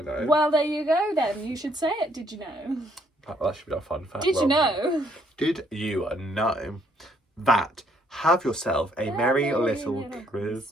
know? Well, there you go then. You should say it. Did you know? That should be our fun fact. Did you know? Did you know that Have Yourself a Merry Little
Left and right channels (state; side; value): normal; both; correlation 0.68